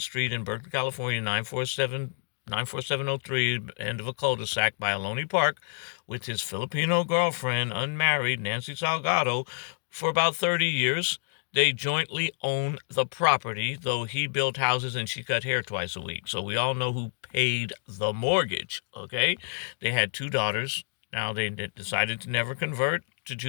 Street in Berkeley, California, 94703, end of a cul-de-sac by Ohlone Park, with his Filipino girlfriend, unmarried, Nancy Salgado, for about 30 years. They jointly own the property, though he built houses and she cut hair twice a week. So we all know who paid the mortgage, okay? They had 2 daughters. Now they decided to never convert to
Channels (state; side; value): silent; right; digital silence